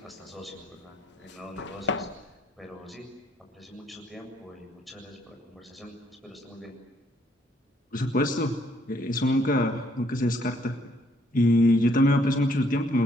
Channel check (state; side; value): normal; both; correlation 0.68